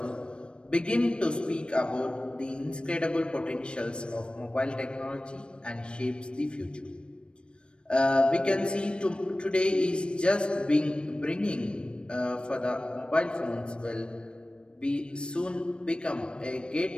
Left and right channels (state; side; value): late; right; 0.056 ms